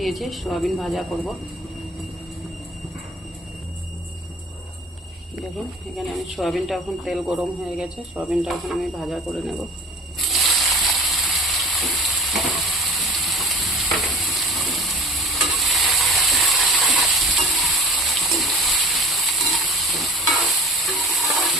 সয়াবিন ভাজা করব। দেখুন এখানে আমি সয়াবিনটা, এখন তেল গরম হয়ে গেছে, সয়াবিনটা এখন আমি ভাজা করে নেব।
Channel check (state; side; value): normal; both; correlation 0.44